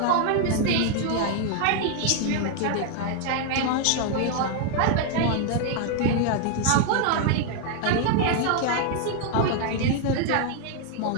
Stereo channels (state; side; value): different; both; correlation 0.00